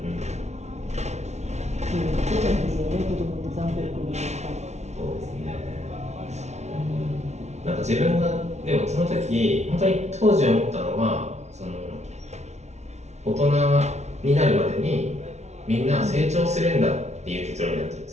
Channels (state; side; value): late; left; 0.32 ms